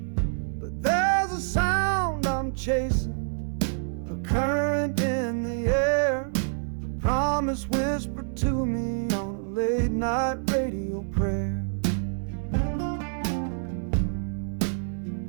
There's a sound I'm chasing, a current in the air, a promise whispered to me on a late night radio prayer.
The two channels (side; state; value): left; silent; 59 dB below the other